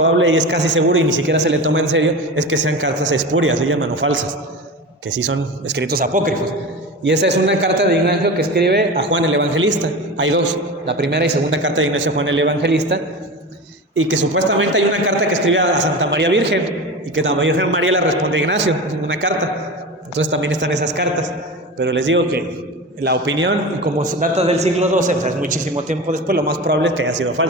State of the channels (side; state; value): both; normal; correlation 0.28